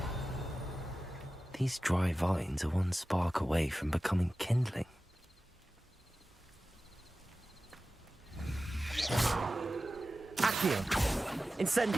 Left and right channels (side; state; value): both; normal; correlation 0.95